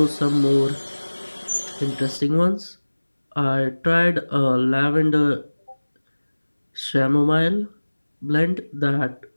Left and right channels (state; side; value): inverted; both; correlation -1.00